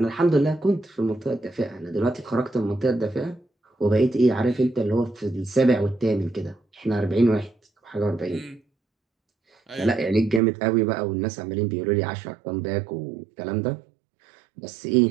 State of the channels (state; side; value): drops out; left; at 10.4 s